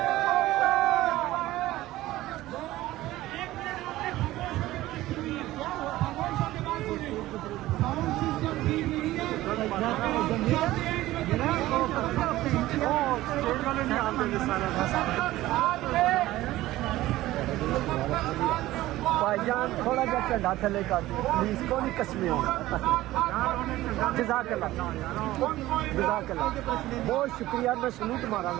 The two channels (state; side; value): quieter; left; 16.3 dB